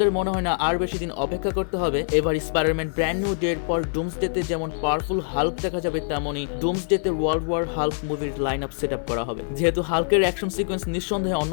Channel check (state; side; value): silent; right; digital silence